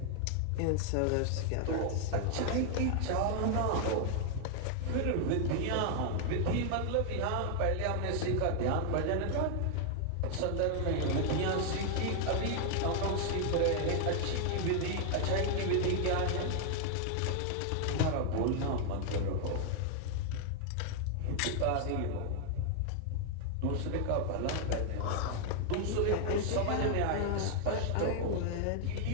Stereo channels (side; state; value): both; different; correlation 0.00